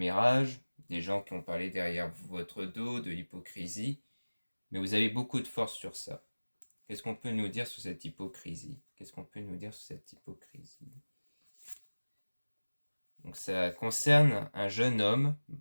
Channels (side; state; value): both; inverted; correlation -1.00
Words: des gens qui ont parlé derrière votre dos, de l'hypocrisie, mais vous avez beaucoup de force sur ça. Qu'est-ce qu'on peut nous dire sur cette hypocrisie? Qu'est-ce qu'on peut nous dire sur cette hypocrisie? Donc ça concerne un jeune homme